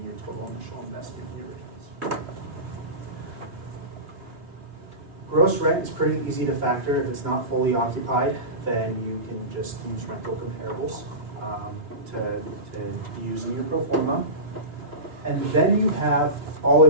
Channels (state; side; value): late; left; 3.5 ms